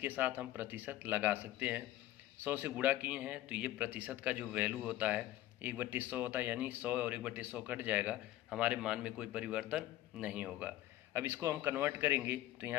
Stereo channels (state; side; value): quieter; right; 14.5 dB